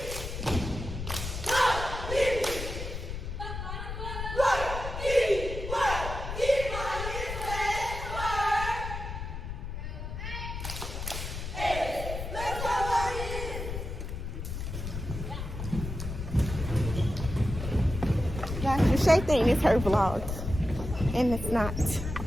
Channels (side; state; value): left; noise; rumble, 6 dB below the sound